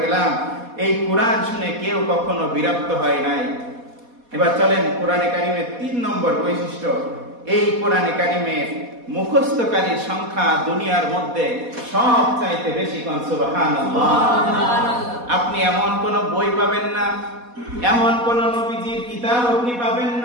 পেলাম, এই কোরআন শুনে কেউ কখনো বিরক্ত হয় নাই। এবার চলেন কোরআনে কারিমের 3 নম্বর বৈশিষ্ট্য। এই কোরআনে কারিমের মুখস্থকারীর সংখ্যা দুনিয়ার মধ্যে সবচাইতে বেশি। কোন সুবহানাল্লাহ। আপনি এমন কোন বই পাবেন না, এমন কোন নবীজির কিতাব আপনি পাবেন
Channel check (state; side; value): late; left; 4.1 ms